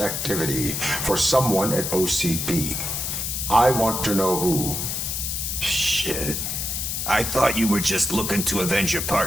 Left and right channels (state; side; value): noise; left; hiss, 2 dB below the sound